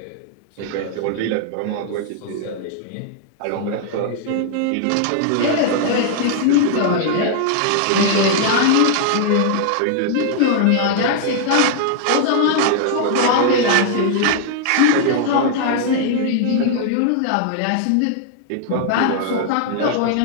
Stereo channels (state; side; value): different; both; correlation 0.00